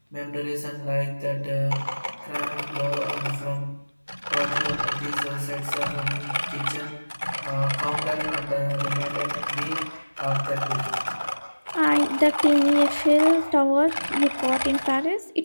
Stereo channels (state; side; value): inverted; both; correlation -1.00